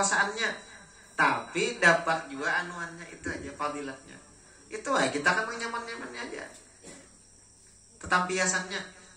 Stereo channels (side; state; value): both; identical; correlation 1.00